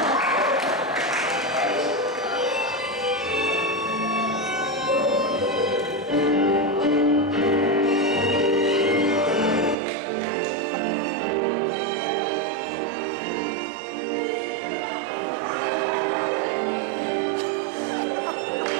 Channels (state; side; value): drops out; left; at 9.8 s